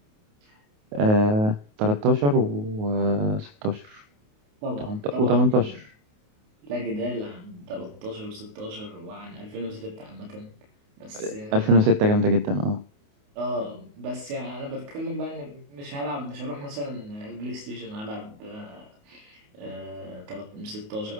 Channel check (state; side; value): late; left; 28 ms